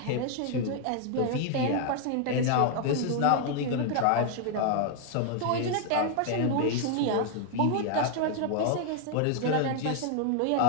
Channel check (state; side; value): different; both; correlation 0.00